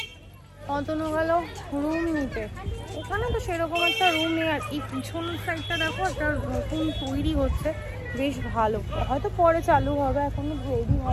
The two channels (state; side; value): identical; both; correlation 1.00